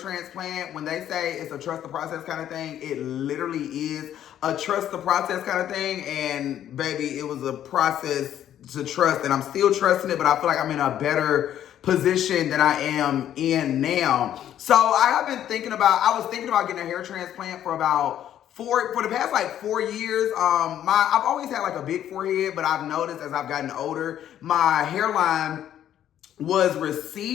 when they say it's a trust the process kind of thing, it literally is a trust the process kind of thing. And baby, it was a process to trust, and I'm still trusting it, but I feel like I'm in a better position than I am in now. So I was thinking about getting a hair transplant for the past like 4 years. I've always had like a big forehead, but I've noticed as I've gotten older, my hairline was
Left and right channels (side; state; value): right; quieter; 11.0 dB